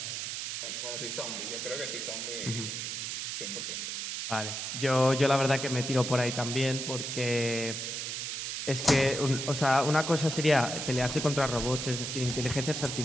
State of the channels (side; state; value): right; noise; hiss, 4 dB below the sound